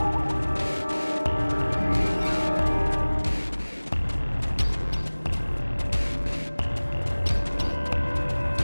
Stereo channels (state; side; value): inverted; both; correlation -1.00